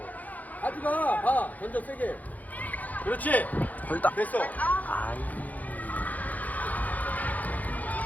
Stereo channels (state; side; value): late; right; 0.079 ms